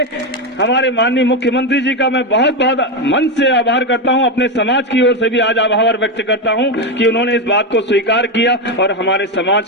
हमारे माननीय मुख्यमंत्री जी का मैं बहुत बहुत मन से आभार करता हूं। अपने समाज की ओर से भी आज आभार व्यक्त करता हूं कि उन्होंने इस बात को स्वीकार किया और हमारे समाज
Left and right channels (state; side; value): normal; both; correlation 0.11